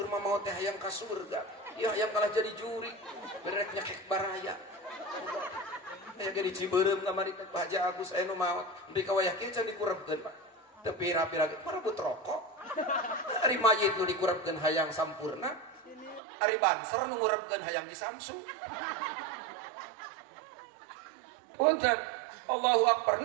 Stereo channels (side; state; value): left; drops out; at 16.2 s